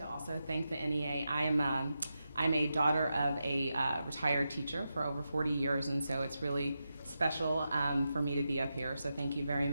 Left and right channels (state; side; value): inverted; both; correlation -0.89